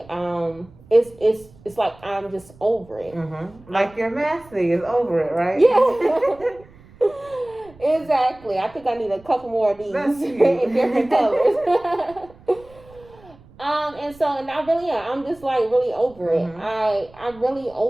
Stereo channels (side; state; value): right; noise; rumble, 24 dB below the sound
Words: it's like I'm just over it. Like your master is over it, right? Yeah. Exactly. I think I need a couple more of these in different colors. And I really am. I'm just like really over it. I'm really